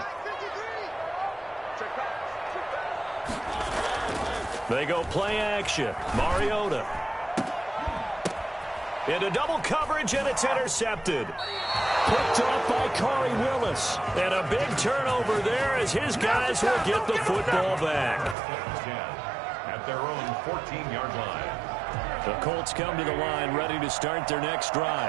They go play action. Mariota. Into double coverage, and it's intercepted. Picked off by Khari Willis. And a big turnover there as his guys will get the football back. At their own 14-yard line. The Colts come to the line ready to start their next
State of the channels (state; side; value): drops out; left; at 18.4 s